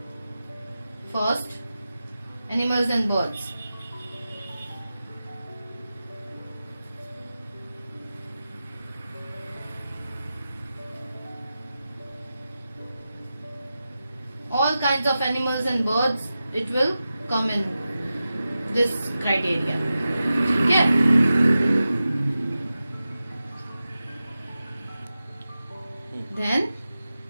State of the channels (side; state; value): both; inverted; correlation -0.93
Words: First, animals and birds. All kinds of animals and birds, it will come in this criteria. Okay? Then